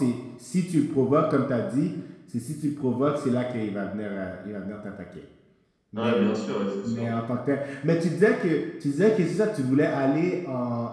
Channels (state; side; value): identical; both; correlation 1.00